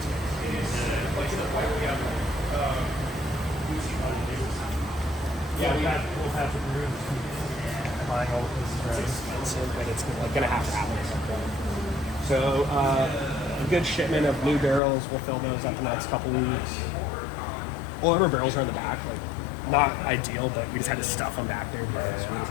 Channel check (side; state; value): right; drops out; at 14.8 s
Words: Yeah, we'll have to do buying all of this. It's expensive, but it's like gonna have to happen at some point. So a good shipment of new barrels. We'll fill those up in the next couple weeks. Well, our barrels are in the back, like not ideal, but we just had to stuff them back there because we was